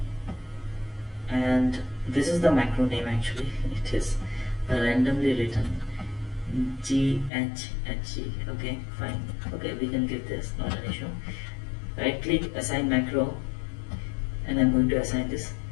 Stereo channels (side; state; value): right; drops out; at 7.3 s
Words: and this is the macro name actually. It is randomly written GHHG. Okay, fine. Okay, we can give this, not an issue. Right click, assign macro, and I'm going to assign this